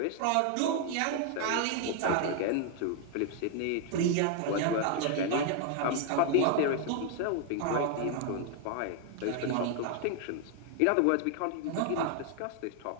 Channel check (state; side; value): different; both; correlation 0.00